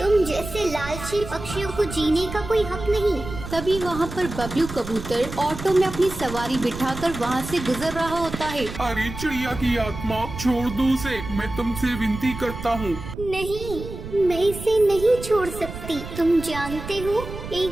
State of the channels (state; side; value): noise; right; rumble, 10 dB below the sound